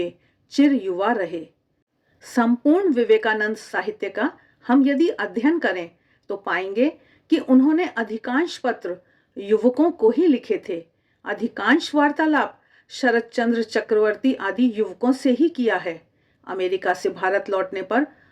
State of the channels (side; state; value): both; identical; correlation 1.00